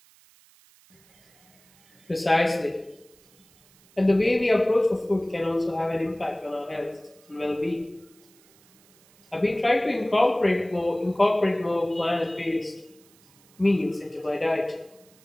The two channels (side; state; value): right; noise; hiss, 30 dB below the sound